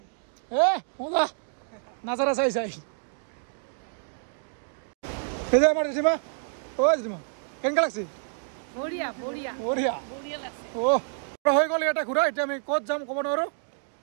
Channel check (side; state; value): left; silent; digital silence